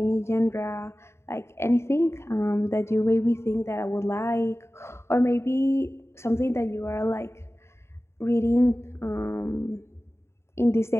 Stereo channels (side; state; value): right; late; 0.13 ms